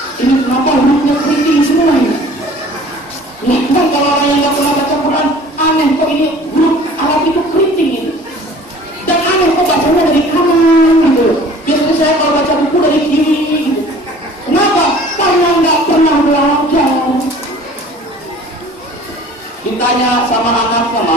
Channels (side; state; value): both; normal; correlation 0.48